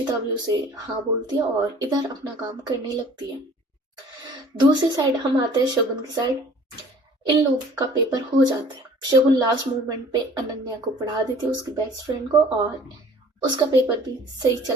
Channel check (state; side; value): normal; both; correlation 0.51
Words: भी उसे हाँ बोलती है और इधर अपना काम करने लगती है। दूसरी साइड हम आते हैं शगुन की साइड। इन लोग का पेपर हो जाता है। शगुन लास्ट मोमेंट पे अनन्या को पढ़ा देती है, उसकी बेस्ट फ्रेंड को, और उसका पेपर भी सही